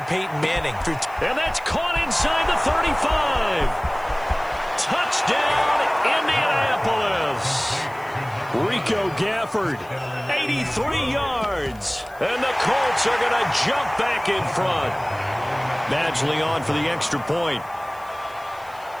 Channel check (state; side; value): noise; left; hiss, 26 dB below the sound